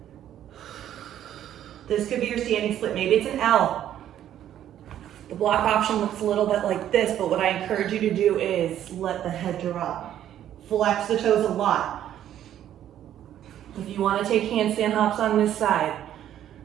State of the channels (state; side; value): quieter; left; 11.2 dB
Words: This could be your standing split. Maybe it's an L. The block option looks a little bit like this, but what I encourage you to do is let the head drop. Flex the toes a lot. If you want to take handstand hops on this side,